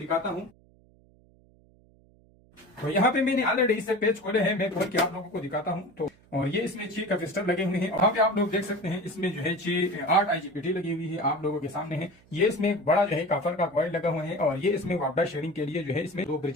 हूँ। तो यहाँ पे मैंने ऑलरेडी इससे पेज खोले हैं, मैं खोल के आप लोगों को दिखाता हूँ। तो और ये इसमें 6 कैपेसिटर लगे हुए हैं। वहाँ पे आप लोग देख सकते हैं इसमें जो है 8 IGBT लगी हुई है, आप लोगों के सामने है। ये इसमें एक बड़ा जो है कॉपर का कॉइल लगा हुआ है और ये इसमें वापडा शेयरिंग के लिए जो है इसमें 2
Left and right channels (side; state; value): right; noise; hum, 29 dB below the sound